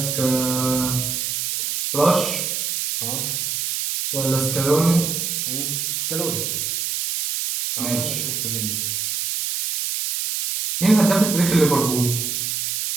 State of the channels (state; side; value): noise; right; hiss, 1 dB below the sound